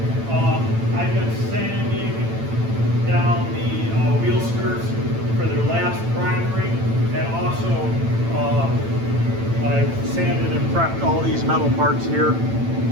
I've been sanding down the wheel skirts for their last primering, and also I've sanded and prepped all these metal parts here,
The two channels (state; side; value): late; left; 8.9 ms